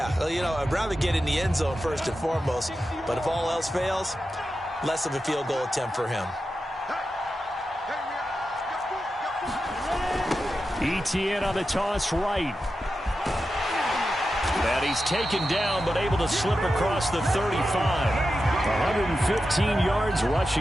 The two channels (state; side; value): normal; both; correlation 0.90